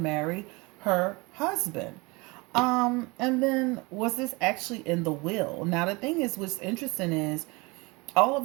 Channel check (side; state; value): left; quieter; 26.1 dB